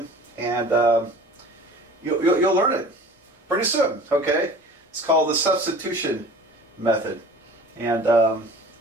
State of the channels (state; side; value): normal; both; correlation 0.43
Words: and you'll learn it pretty soon, okay? It's called the substitution method. And,